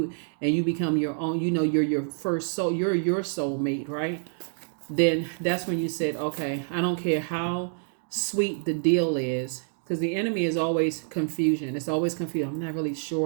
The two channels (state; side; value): silent; left; digital silence